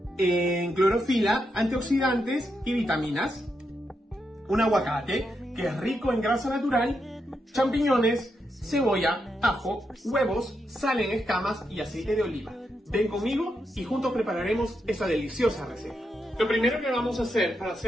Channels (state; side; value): normal; both; correlation 0.83